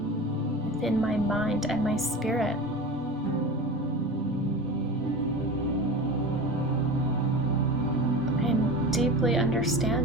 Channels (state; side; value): normal; both; correlation 0.31